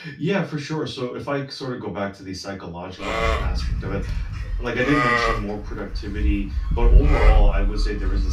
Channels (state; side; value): identical; both; correlation 1.00